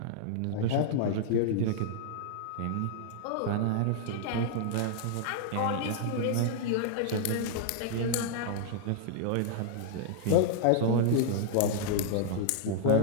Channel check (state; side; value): different; both; correlation -0.01